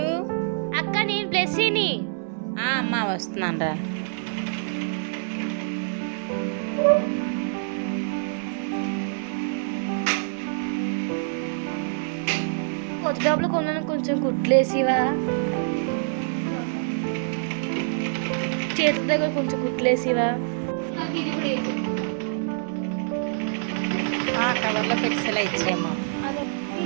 అక్క నేను బ్లెస్సీని. అమ్మా వస్తున్నాను రా. కొత్త డబ్బులు కొన్నాను, కొంచెం కుట్లేసివా? చేతుల దగ్గర కొంచెం కుట్లేసివా? కవర్లో పెట్సలా ఇచ్చేయమ్మా.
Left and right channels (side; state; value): left; silent; digital silence